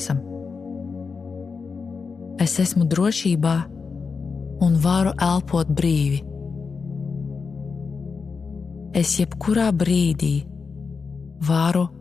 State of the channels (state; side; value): quieter; right; 5.1 dB